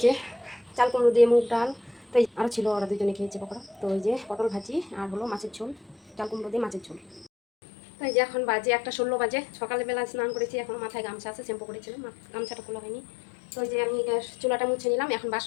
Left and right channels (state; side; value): drops out; right; at 7.3 s